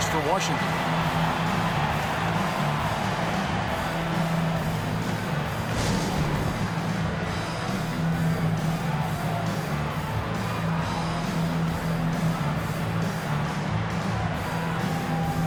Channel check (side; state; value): both; identical; correlation 1.00